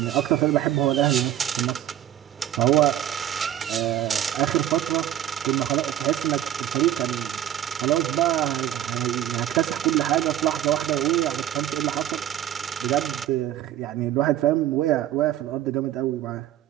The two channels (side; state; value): left; quieter; 11.9 dB